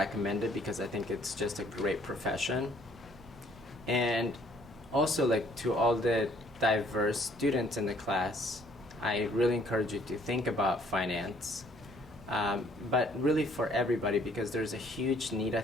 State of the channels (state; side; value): normal; both; correlation 0.62